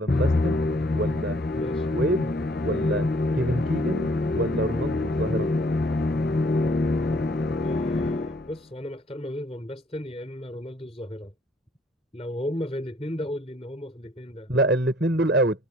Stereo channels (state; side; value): normal; both; correlation 0.61